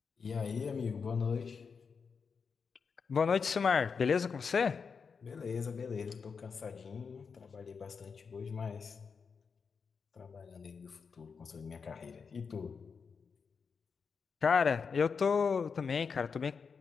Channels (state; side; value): quieter; right; 5.6 dB